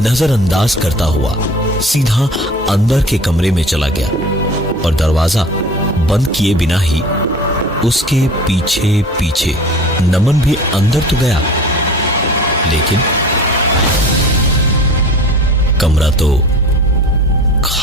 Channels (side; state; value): both; normal; correlation 0.41